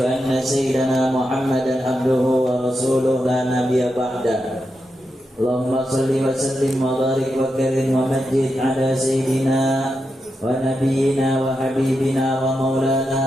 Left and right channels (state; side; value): normal; both; correlation 0.86